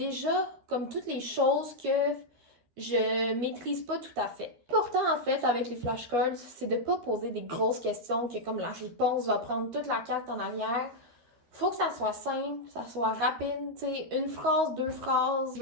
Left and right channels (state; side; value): late; left; 13 ms